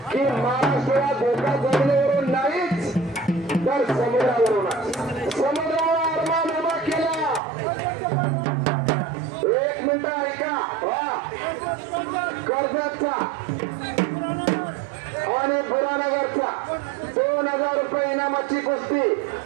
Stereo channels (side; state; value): left; drops out; at 7.4 s